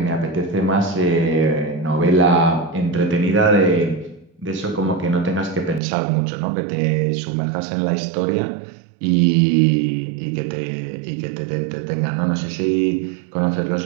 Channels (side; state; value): left; drops out; at 5.8 s